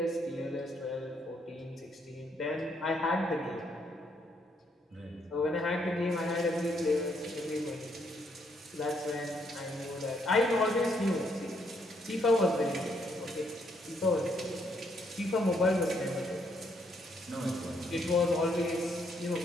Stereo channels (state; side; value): normal; both; correlation 0.73